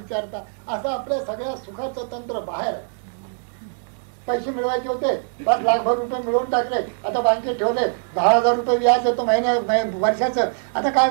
असं आपल्या सगळ्या सुखाचं तंत्र बाहेर आहे. पैसे मिळवायचे होते, 5 लाखभर रुपये मिळवून टाकले, आता बँकेत ठेवले, 10,000 रुपये व्याज येतो वर्षाचं. आता काय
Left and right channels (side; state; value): left; silent; digital silence